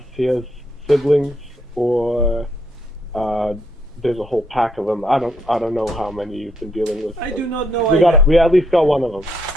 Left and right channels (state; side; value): normal; both; correlation 0.73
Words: he has siblings or there's a whole pack of them. I don't know how many you've been dealing with. I do not know. We at least got one of them.